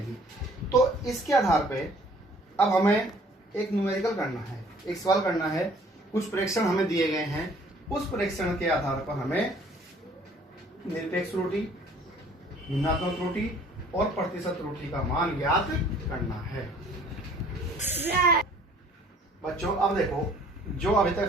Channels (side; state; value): both; normal; correlation 0.56